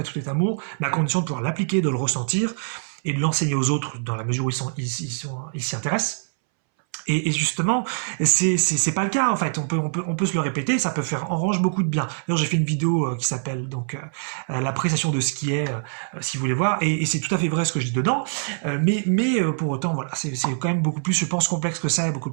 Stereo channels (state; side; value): silent; left; 63 dB below the other